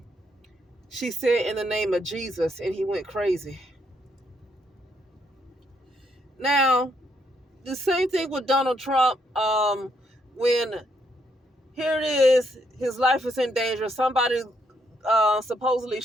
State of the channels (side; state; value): both; normal; correlation 0.74